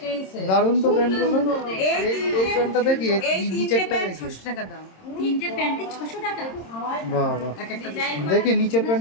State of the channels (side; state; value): right; late; 26 ms